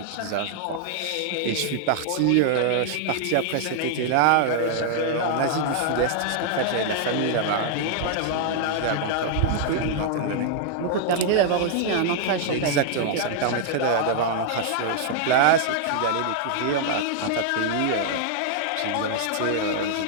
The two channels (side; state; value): both; different; correlation 0.00